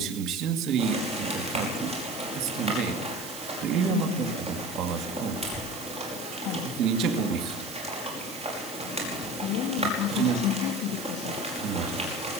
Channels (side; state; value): right; noise; hiss, 12 dB below the sound